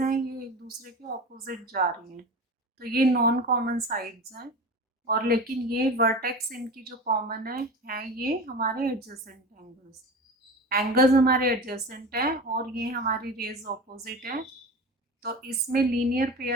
हैं ये एक दूसरे के ऑपोजिट जा रही हैं, तो ये नॉन कॉमन साइड्स हैं। और लेकिन ये वर्टेक्स इनकी जो कॉमन है ये हमारे एडजेसेंट एंगल्स। एंगल्स हमारे एडजेसेंट हैं और ये हमारी रेज ऑपोजिट है। तो इसमें लीनियर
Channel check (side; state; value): both; normal; correlation 0.31